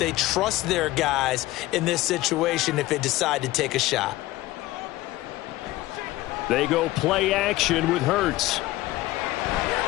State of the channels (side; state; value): right; quieter; 17.4 dB